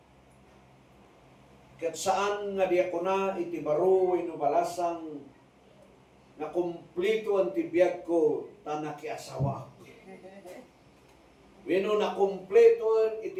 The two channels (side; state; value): both; identical; correlation 1.00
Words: ket saan nga diakona iti baro wenno balasang na kumpleto ang tibiyag ko tanakiasawa. Wenno na kumpleto